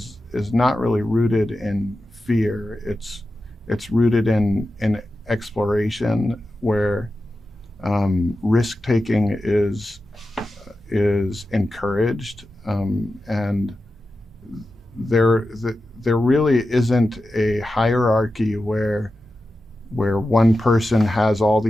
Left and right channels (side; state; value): both; normal; correlation 0.92